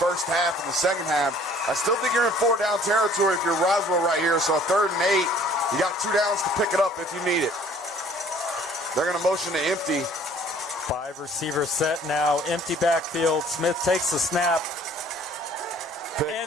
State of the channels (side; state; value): both; normal; correlation 0.55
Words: first half and the second half, I still think you're in 4-down territory if you're Roswell right here. So 3rd and 8, you got 2 downs to pick it up if you need it. They're going to motion to empty. 5 receiver set now, empty backfield. Smith takes the snap,